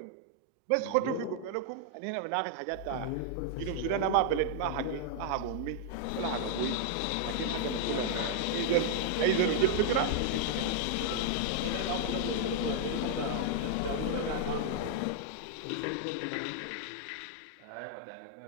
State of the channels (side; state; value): both; different; correlation -0.01